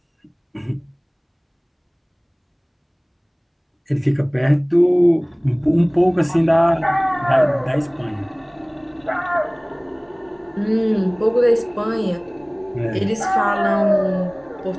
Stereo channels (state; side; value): identical; both; correlation 1.00